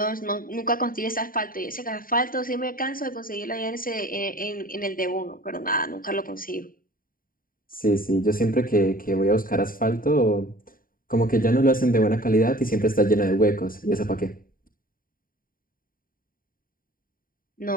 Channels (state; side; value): late; right; 0.41 ms